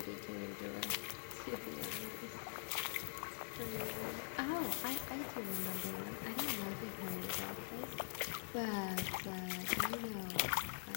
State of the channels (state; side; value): silent; right; digital silence